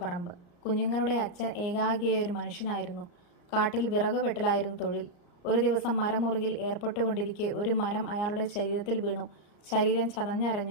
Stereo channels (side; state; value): right; late; 34 ms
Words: പറമ്പ്. കുഞ്ഞുങ്ങളുടെ അച്ഛൻ ഏകാഗിയായ ഒരു മനുഷ്യനായിരുന്നു. കാട്ടിൽ വിറക് വെട്ടലായിരുന്നു തൊഴിൽ. ഒരു ദിവസം മരമുറിയിൽ ഏർപ്പെട്ടുകൊണ്ടിരിക്കെ ഒരു മരം അയാളുടെ ശരീരത്തിൽ വീണു. ശരീരം